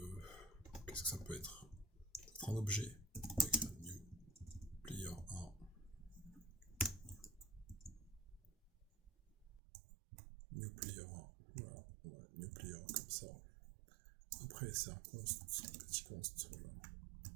qu'est-ce que ça peut être? Un objet. New player 1. New player 1. Voilà. New player 1 comme ça. Après, c'est un const, petit const. Voilà.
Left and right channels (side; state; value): left; drops out; at 9.6 s